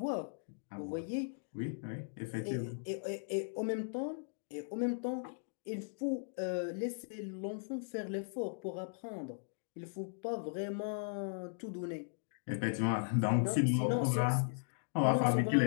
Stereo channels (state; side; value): silent; right; digital silence